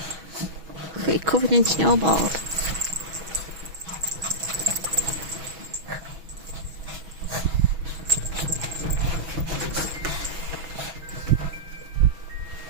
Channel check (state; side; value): late; left; 6.2 ms